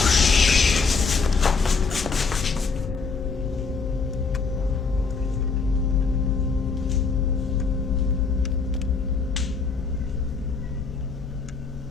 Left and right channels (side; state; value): right; quieter; 4.8 dB